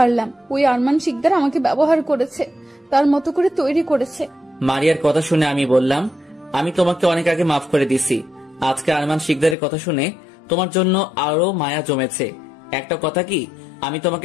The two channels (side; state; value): right; drops out; at 9.6 s